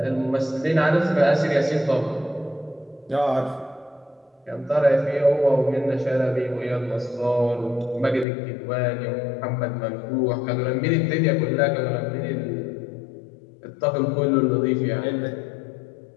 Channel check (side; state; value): right; drops out; at 8.2 s